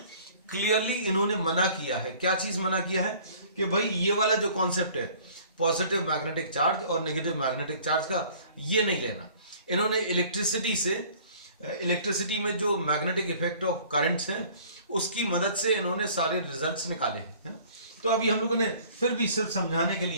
क्लियरली इन्होंने मना किया है। क्या चीज मना किया है कि भाई ये वाला जो कॉन्सेप्ट है पॉजिटिव मैग्नेटिक चार्ज और नेगेटिव मैग्नेटिक चार्ज का, ये नहीं लेना। इन्होंने इलेक्ट्रिसिटी में जो मैग्नेटिक इफेक्ट ऑफ करंट्स हैं उसकी मदद से इन्होंने सारे रिजल्ट्स निकाले हैं। तो अभी हम लोगों ने फिर भी सिर्फ समझाने के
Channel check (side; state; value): both; inverted; correlation -0.52